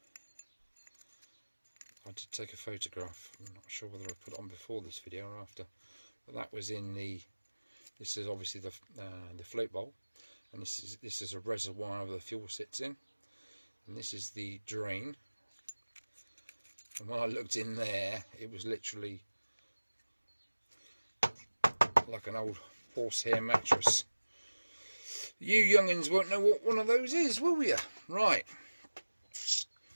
I did take a photograph. I'm not sure whether I put it on before this video or after, but that was in the. This is obviously the float bowl, and this is a reservoir where the fuel sits in, and this is the drain. And when I looked in there, it was literally like an old horsehair mattress. You youngins won't know what one of those is, will you? Right.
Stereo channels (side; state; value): both; inverted; correlation -1.00